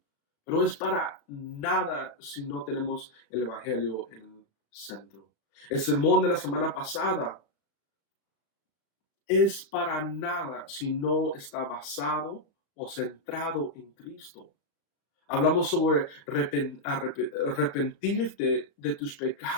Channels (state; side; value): late; right; 36 ms